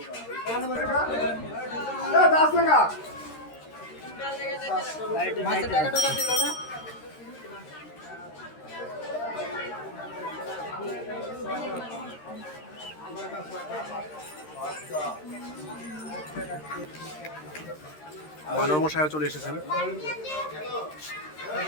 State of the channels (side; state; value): right; late; 13 ms